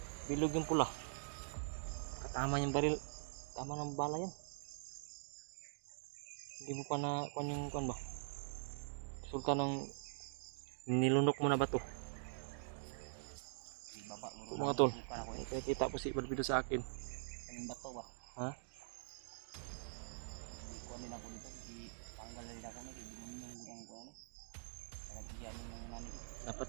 Bilog yung pula. Katama yung baril. Tama ng bala yan. Hindi mo pa na yung kuan ba? Resulta ng nilunok mo na ba to? Ito mga tol. Kita po si Barbido sa akin. Kaming bato ba? Ha? Kuha din ako dito. Tanggal din ako na. Kaya yung gudang ko ano. Nagigyan yung nani ko. Dapat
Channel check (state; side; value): silent; left; digital silence